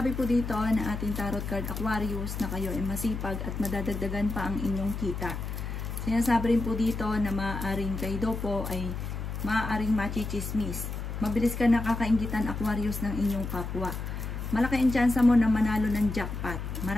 po dito na ating tarot card Aquarius na kayo ay masipag at madadagdagan pa ang inyong kita. Sinasabi rin po dito na maaaring kayo daw po ay maaaring machichismis. Mabilis ka nakakainggitan Aquarius ng inyong kapwa. Malaki ang tsansa mo na manalo ng jackpot.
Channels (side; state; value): left; noise; hum, 5 dB below the sound